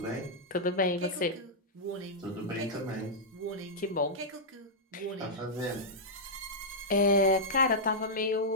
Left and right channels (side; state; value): both; normal; correlation -0.09